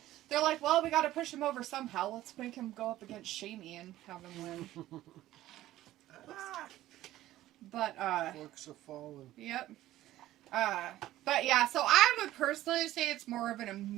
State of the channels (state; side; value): quieter; left; 14.8 dB